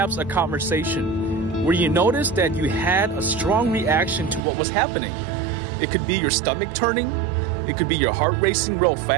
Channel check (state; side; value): drops out; left; at 4.4 s